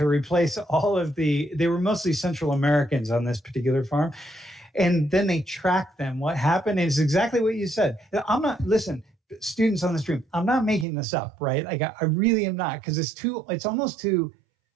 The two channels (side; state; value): left; drops out; at 10.9 s